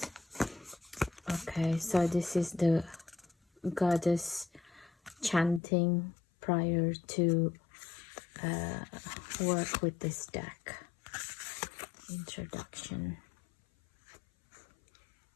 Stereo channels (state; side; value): drops out; right; at 5.6 s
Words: Okay, so this is the goddess chanting prior to work with this deck. Introduction.